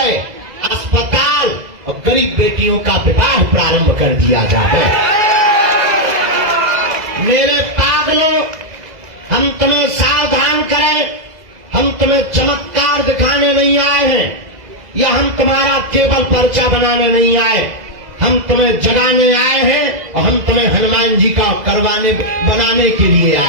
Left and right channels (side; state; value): left; late; 2.0 ms